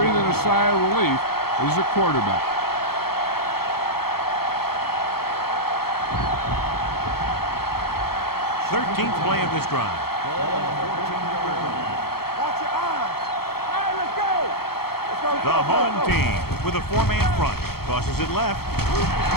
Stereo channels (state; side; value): late; right; 0.95 ms